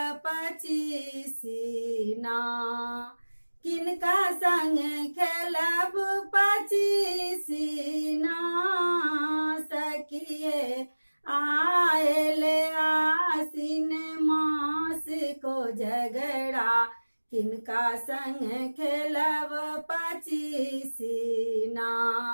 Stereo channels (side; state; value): both; inverted; correlation -1.00